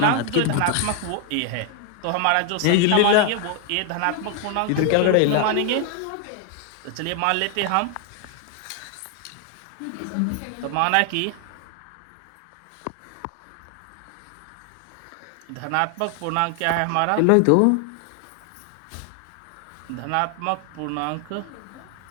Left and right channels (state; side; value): different; both; correlation 0.00